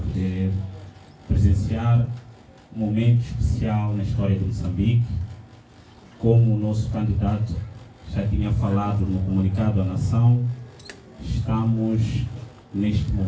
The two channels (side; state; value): both; identical; correlation 1.00